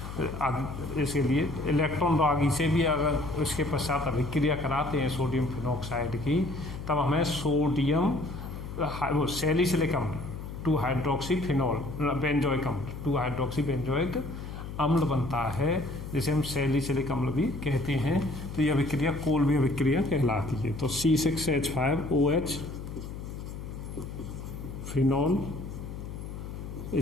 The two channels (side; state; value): left; noise; hum, 9 dB below the sound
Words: इसके लिए इलेक्ट्रॉन रागी से भी अगर उसके पश्चात अभिक्रिया कराते हैं सोडियम फिनॉक्साइड की, तब हमें सोडियम सैलिसिलिक अम्ल 2-हाइड्रोक्सीफिनॉल बेंजोइक अम्ल 2-हाइड्रोक्सीबेंजोइक अम्ल बनता है, जिसे हम सैलिसिलिक अम्ल भी कहते हैं। तो यह अभिक्रिया कोल्बे अभिक्रिया कहलाती है। तो C6H5OH फिनॉल,